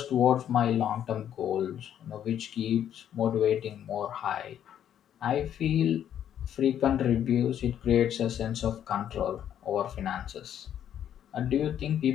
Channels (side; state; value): right; quieter; 10.0 dB